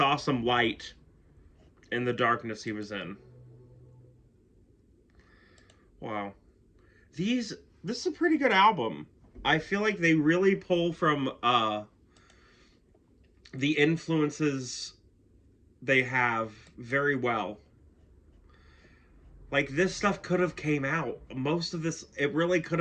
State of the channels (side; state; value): both; identical; correlation 1.00